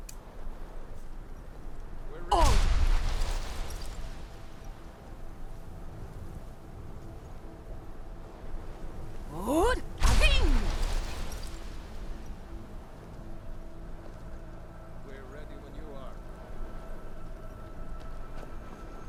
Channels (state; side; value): identical; both; correlation 1.00